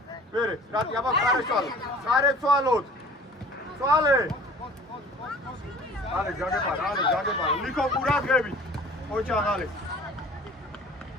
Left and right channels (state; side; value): normal; both; correlation 0.47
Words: მერე, რატი, აბა ხარეცვალოთ. წვალე. ალე, ჯაგებარა. ლიკო ყურადღებით. ოჩაღალე.